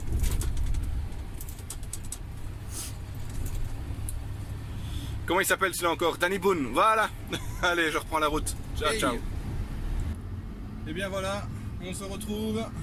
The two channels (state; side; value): identical; both; correlation 1.00